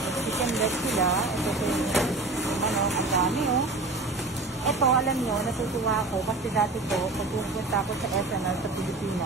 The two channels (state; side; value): quieter; left; 3.2 dB